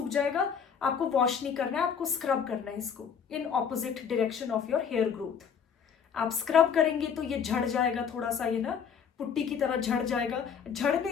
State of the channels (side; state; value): right; quieter; 7.1 dB